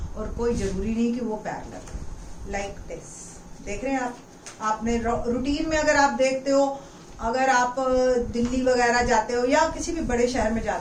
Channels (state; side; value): identical; both; correlation 1.00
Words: और कोई जरूरी नहीं कि वो पैरेलल। लाइक दिस देख रहे हैं आप, आपने रूटीन में अगर आप देखते हो, अगर आप दिल्ली वगैरह जाते हो या किसी भी बड़े शहर में